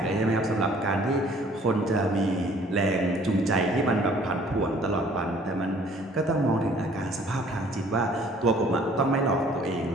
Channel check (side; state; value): both; normal; correlation 0.56